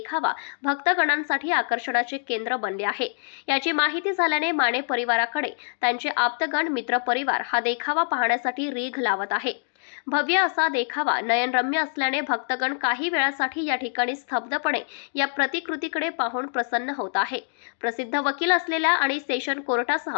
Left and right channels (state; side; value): silent; right; digital silence